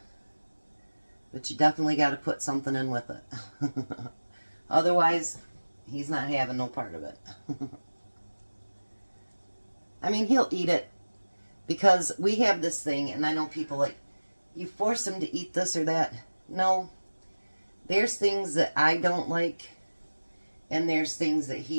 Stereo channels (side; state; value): both; inverted; correlation -1.00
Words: But you definitely got to put something in with it. Otherwise, he's not having no part of it. I mean, he'll eat it because we have this thing, and I know people like, you force him to eat this or that. No, there's things that I don't like, and there's things that